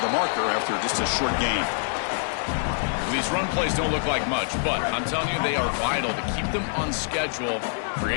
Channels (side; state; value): right; silent; 59 dB below the other